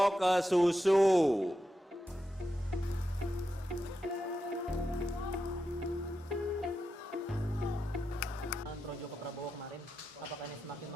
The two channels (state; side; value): normal; both; correlation 0.88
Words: ke susu. Projo ke Prabowo kemarin, apakah ini semakin